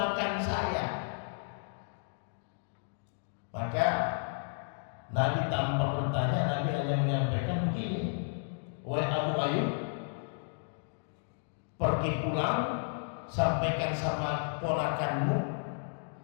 saya. Maka Nabi tanpa bertanya, Nabi hanya menyampaikan begini, wahai Abu Ayyub, pergi pulang, sampaikan sama ponakanmu,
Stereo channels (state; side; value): silent; right; digital silence